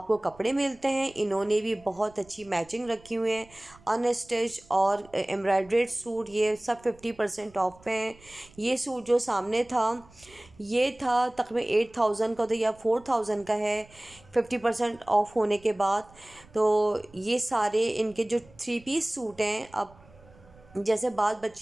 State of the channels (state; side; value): noise; right; rumble, 26 dB below the sound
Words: कपड़े मिलते हैं। इन्होंने भी बहुत अच्छी मैचिंग रखी हुई है, अनस्टिच और एम्ब्रॉयड्रेड सूट, ये सब 50% ऑफ पे हैं। ये सूट जो सामने था ये था तकरीबन 8000 का, तो या 4000 का है 50% ऑफ होने के बाद। तो ये सारे इनके जो 3 पीस सूट हैं, अब जैसे बाद